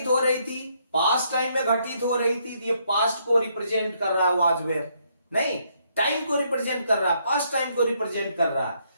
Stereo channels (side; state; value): both; inverted; correlation -0.73